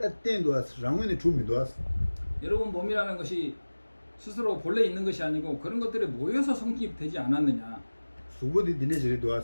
땡도 왔어. 랑원의 주민도 왔어. 여러분 몸이라는 것이 스스로 본래 있는 것이 아니고 그런 것들이 모여서 성립되지 않았느냐. 수고디 디네 저리도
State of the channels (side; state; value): both; inverted; correlation -1.00